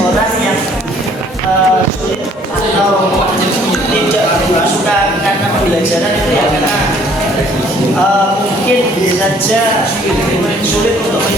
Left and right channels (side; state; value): both; normal; correlation 0.59